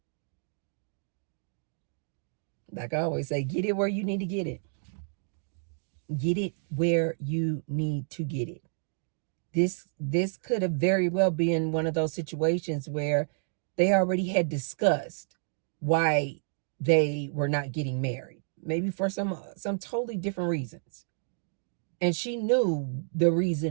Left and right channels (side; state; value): left; silent; digital silence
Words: Like I always say, get it where you need to get it. Get it where you need to get it. This could have very well been one of those situations where they already had discussed why they were not getting married. Maybe for some totally different reasons. And she knew the